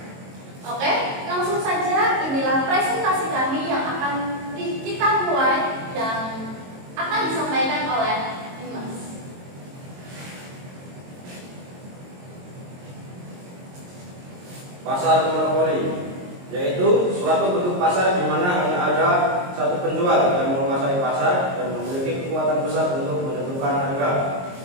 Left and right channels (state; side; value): late; left; 22 ms